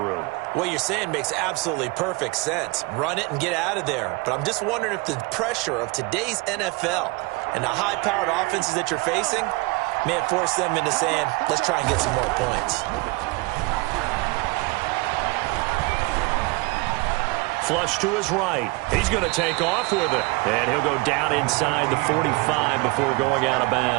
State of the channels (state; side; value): quieter; left; 25.0 dB